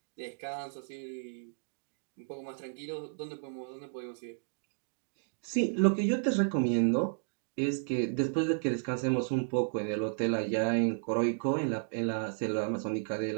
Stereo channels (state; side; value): silent; left; digital silence